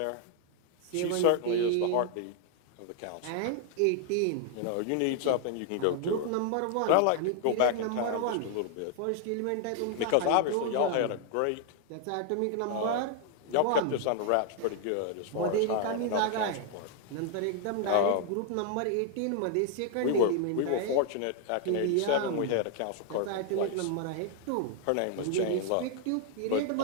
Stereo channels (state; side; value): different; both; correlation 0.00